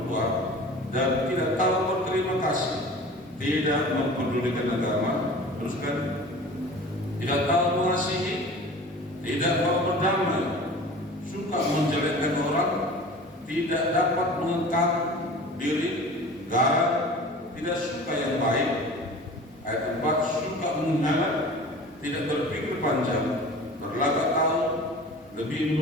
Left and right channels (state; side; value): normal; both; correlation 0.40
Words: tua dan tidak tahu berterima kasih, tidak mempedulikan agama, terus kan, tidak tahu mengasihi, tidak mau berdamai, suka menjelekkan orang, tidak dapat mengengkang diri, garang, tidak suka yang baik. Ayat 4, suka mengkhianat, tidak berpikir panjang, berlagak tahu, lebih